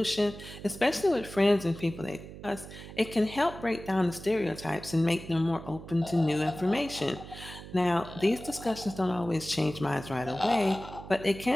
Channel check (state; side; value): noise; right; hum, 14 dB below the sound